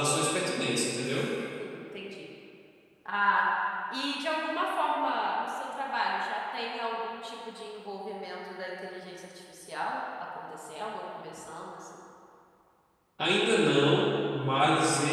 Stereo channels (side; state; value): both; identical; correlation 1.00